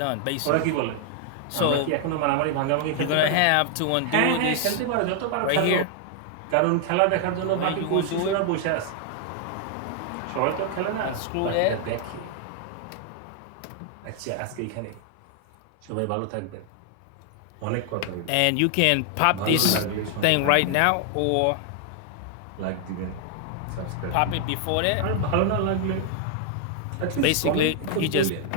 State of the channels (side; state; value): both; different; correlation 0.00